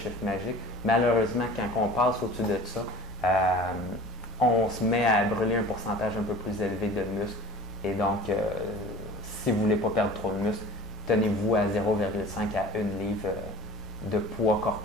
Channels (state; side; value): normal; both; correlation 0.45